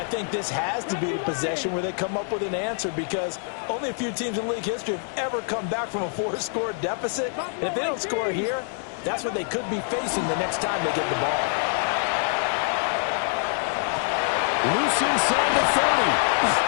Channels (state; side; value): silent; right; 61 dB below the other